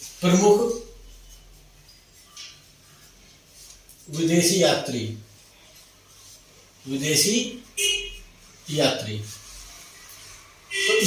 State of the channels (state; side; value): identical; both; correlation 1.00